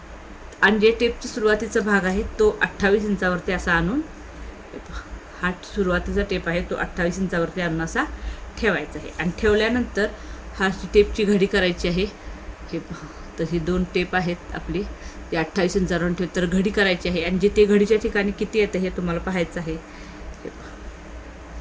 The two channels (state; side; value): identical; both; correlation 1.00